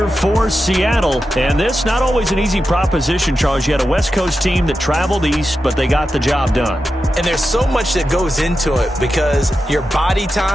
for Seattle. And this not always an easy proposition, Charles. You had a West Coast team that traveled east, but they got the job done. And there's so much that goes into it because your body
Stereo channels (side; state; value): both; normal; correlation 0.90